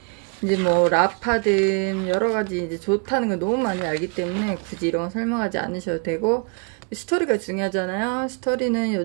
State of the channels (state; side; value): quieter; left; 36.1 dB